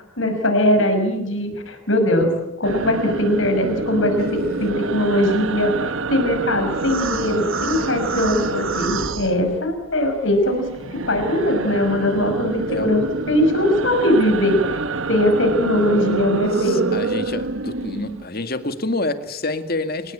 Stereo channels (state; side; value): normal; both; correlation 0.28